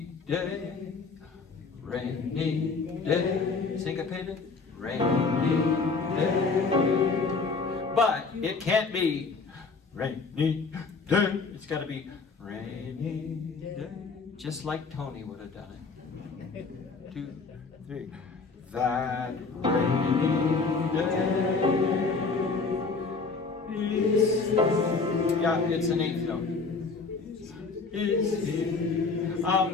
day, rainy day. Syncopated. Rainy day. But it can't be rainy day. It's got to be rainy day. Just like Tony would have done it. 2, 3. That rainy day is, yeah, it's an 8th note. Is here.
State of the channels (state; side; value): quieter; right; 4.4 dB